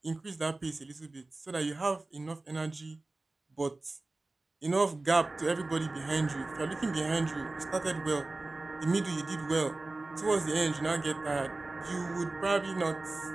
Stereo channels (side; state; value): left; quieter; 3.1 dB